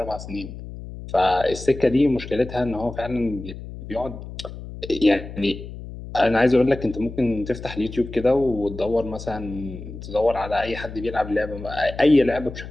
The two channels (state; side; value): noise; left; hum, 12 dB below the sound